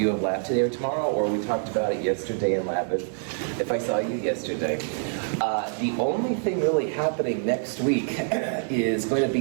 have lab today or tomorrow, or we talked about it yesterday in lab if I saw you yesterday. The only thing really happening next week is going to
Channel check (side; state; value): left; silent; digital silence